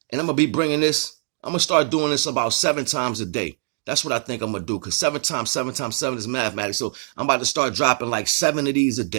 And I'm gonna be bringing this, I'm gonna start doing this about 7 times a day. That's what I think I'm gonna do, because 7 times 7 times 7 is mathematics. So I'm about to start dropping like 7 of these a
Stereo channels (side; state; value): left; silent; digital silence